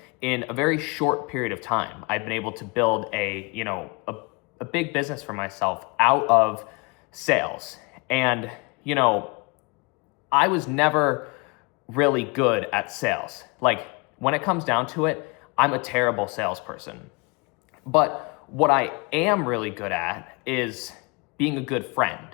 in a very short period of time. I've been able to build a big business for myself out of sales. And I was never really good at sales. When it comes down to it, I'm a terrible salesperson. But what I am really good at is being a good friend.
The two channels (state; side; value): quieter; right; 29.1 dB